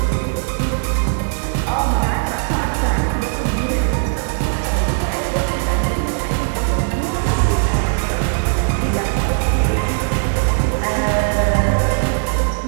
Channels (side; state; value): left; silent; digital silence